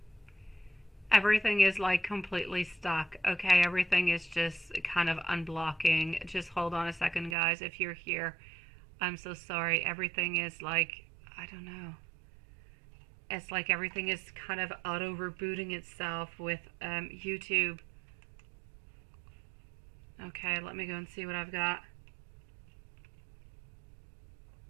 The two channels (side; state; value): left; drops out; at 7.4 s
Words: Everything is like completely stuck. Okay, everything is just kind of unblocking. Just hold on a second, guys. If you're here, I'm so sorry. Everything is like, I don't know. It's like everything is kind of auto rebooting itself with YouTube. Okay, let me go and see what I've got.